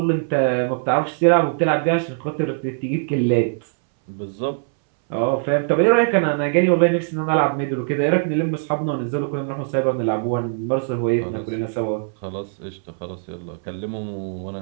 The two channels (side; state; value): left; silent; 62 dB below the other